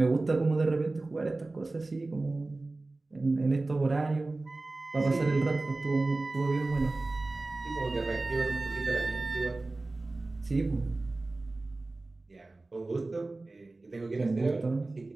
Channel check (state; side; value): quieter; left; 3.2 dB